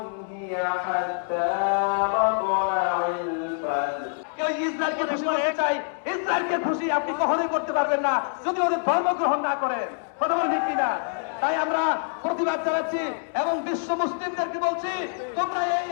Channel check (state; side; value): silent; right; 61 dB below the other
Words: هي حتى مطلع الفجر। কেউ ইসরায়েলকে খুশি করতে চাই, ইসরায়েলকে খুশি আপনি কখনোই করতে পারবেন না যদি ওদের ধর্ম গ্রহণ না করেন। কথা বলেন ঠিক কিনা? তাই আমরা প্রতিবাদ জানাচ্ছি এবং বিশ্ব মুসলিমদেরকে বলছি, তোমরা এই